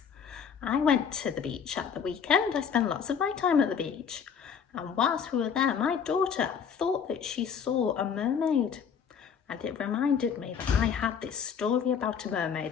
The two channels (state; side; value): quieter; right; 7.1 dB